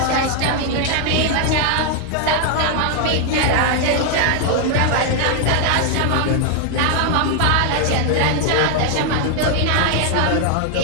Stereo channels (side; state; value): both; different; correlation 0.00